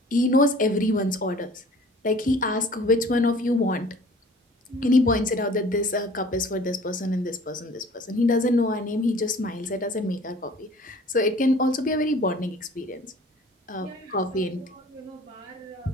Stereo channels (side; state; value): both; normal; correlation 0.49